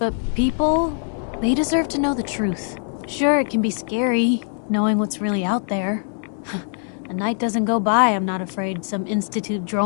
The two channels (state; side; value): silent; right; 64 dB below the other